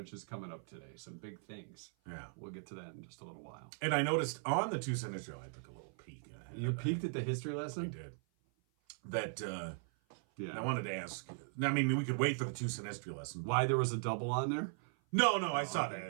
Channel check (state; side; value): silent; left; 52 dB below the other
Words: is coming up today. Some big things. Yeah. We'll get to that in just a little while. And I noticed on the 2-cent history, I took a little peek. You peeked at the history I lesson? did. That, Yeah. I wanted to ask. I mean, we could wait for the 2-cent history lesson. Why there was a double on there? No, I saw that.